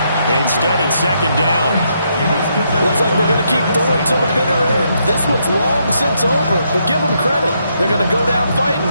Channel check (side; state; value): both; inverted; correlation -0.77